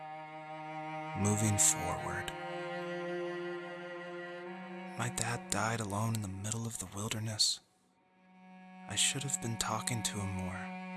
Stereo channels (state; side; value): identical; both; correlation 1.00